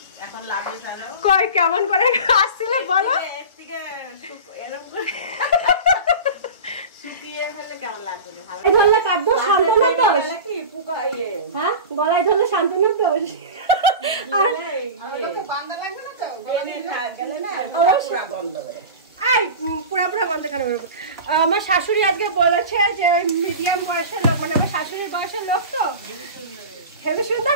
এখন লাগে কই কেমন করে আসছিল বলো? ধরলে কাটবো শান্তনার দোষ? হ্যাঁ, গলায় ধরলে শান্তনার দোষ? পুরা গন্ধ কেন? আমার শাশুড়ি আজকে বলেছে যে ওই মিডিয়াম বয়সের লোক, মানে আমার শাশুড়ির বয়সের লোক, তো হেবি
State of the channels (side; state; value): both; inverted; correlation -0.31